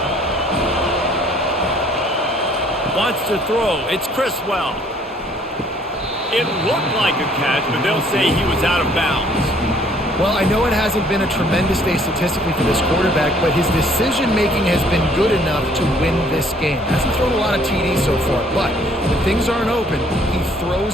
Wants to throw. It's Criswell. It looked like a catch, but they'll say he was out of bounds. Well, I know it hasn't been a tremendous day statistically for this quarterback, but his decision-making has been good enough to win this game. Hasn't thrown a lot of TDs so far, but when things aren't open, he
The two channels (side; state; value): both; normal; correlation 0.60